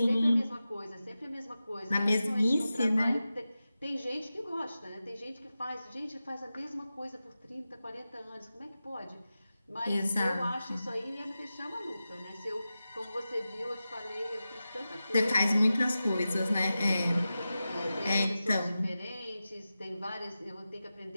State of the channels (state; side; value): inverted; both; correlation -0.93